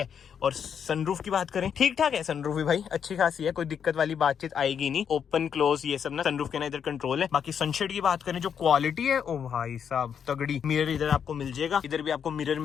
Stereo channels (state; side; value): quieter; right; 7.7 dB